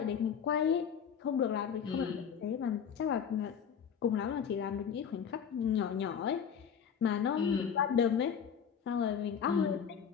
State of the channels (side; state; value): right; quieter; 7.5 dB